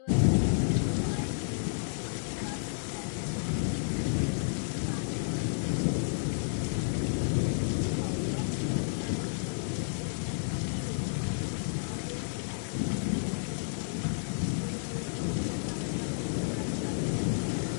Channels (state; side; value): silent; right; digital silence